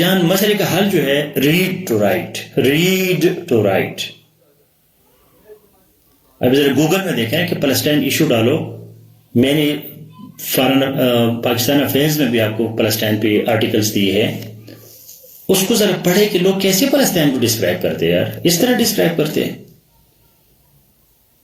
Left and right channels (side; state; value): both; identical; correlation 1.00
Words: مسئلے کا حل جو ہے read to write. اب ذرا گوگل میں دیکھیں کہ پلسٹائن ایشو ڈالو. میں نے فارن پاکستان افیئرز میں بھی آپ کو پلسٹائن پہ آرٹیکلز دیے ہیں, اس کو ذرا پڑھے کہ لوگ کیسے پلسٹائن کو ڈسکرائب کرتے ہیں یار, اس طرح ڈسکرائب کرتے ہیں.